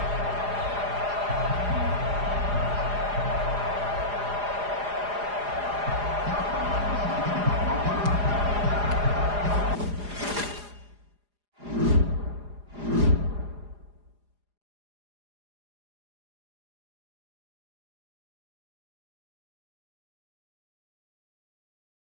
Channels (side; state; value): left; late; 4.9 ms